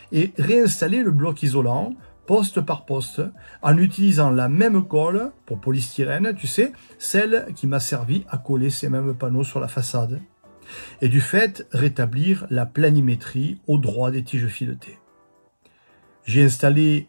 et réinstallé le bloc isolant, poste par poste, en utilisant la même colle pour polystyrène, tu sais, celle qui m'a servi à coller ces mêmes panneaux sur la façade. Et du fait, rétablir la planimétrie au droit des tiges filetées. J'ai installé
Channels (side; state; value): both; inverted; correlation -1.00